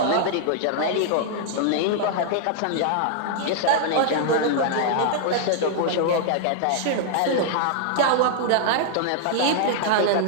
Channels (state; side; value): different; both; correlation -0.01